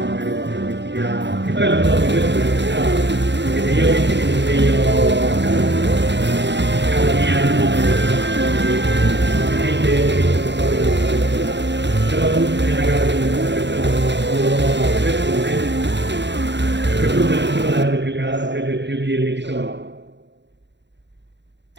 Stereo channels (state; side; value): late; left; 0.52 ms